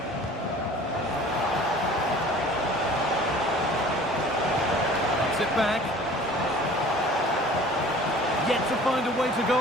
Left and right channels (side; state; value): both; normal; correlation 0.47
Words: Puts it back. Yet to find a way to